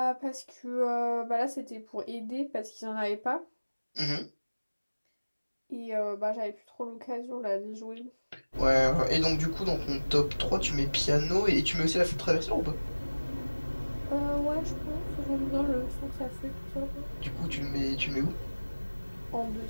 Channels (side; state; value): both; inverted; correlation -1.00